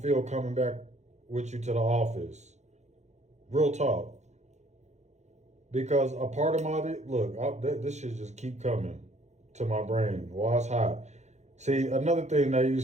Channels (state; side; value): late; left; 0.33 ms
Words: coming back with you to the office. Real talk. Because a part of this shit just keep coming to my brain while it's hot. See, another thing they